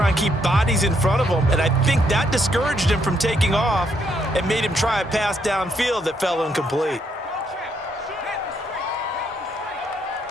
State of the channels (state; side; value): normal; both; correlation 0.74